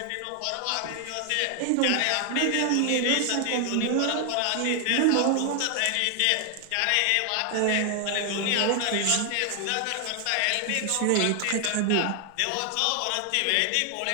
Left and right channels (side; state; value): both; different; correlation 0.00